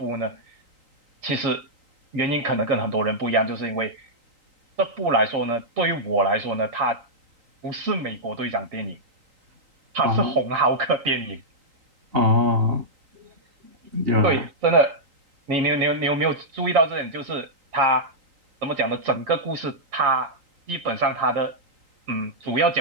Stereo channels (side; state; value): left; late; 3.8 ms